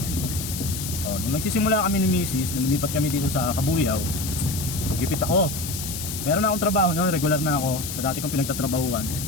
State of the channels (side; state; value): left; noise; hiss, 7 dB below the sound